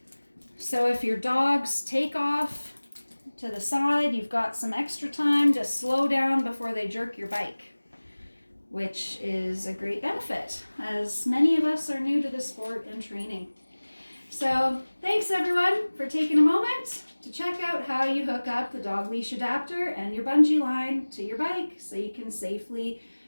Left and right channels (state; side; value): inverted; both; correlation -1.00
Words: so if your dogs take off to the side, you've got some extra time to slow down before they jerk your bike, which is a great benefit, as many of us are new to the sport and training. So thanks everyone for taking a moment to check out how you hook up the dog leash adapter and your bungee line to your bike so you can safely